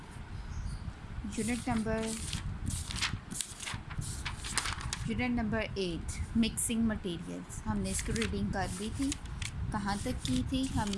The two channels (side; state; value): both; identical; correlation 1.00